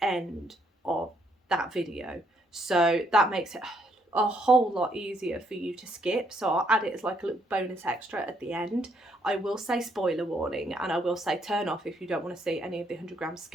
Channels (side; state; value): both; normal; correlation 0.72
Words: end of that video. So that makes it a whole lot easier for you to skip. So I'll add it as like a little bonus extra at the end. I will say spoiler warning and I will say turn off if you don't want to see any of the 100-gram